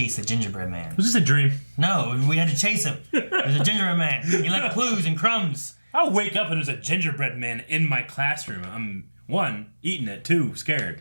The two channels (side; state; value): both; inverted; correlation -1.00